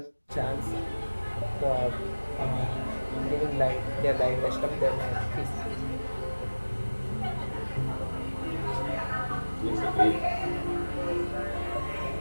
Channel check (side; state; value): both; inverted; correlation -1.00